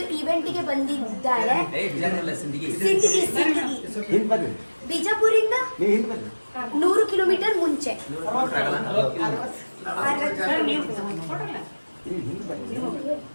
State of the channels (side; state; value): both; inverted; correlation -1.00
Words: ಇವೆಂಟ್ಗೆ ಬಂದಿದ್ದಾರೆ. ಬಿಜಾಪುರಿಂದ 100 ಕಿಲೋಮೀಟರ್ ಮುಂಚೆ.